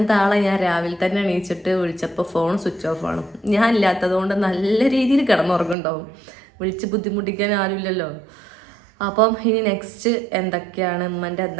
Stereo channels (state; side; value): drops out; left; at 5.8 s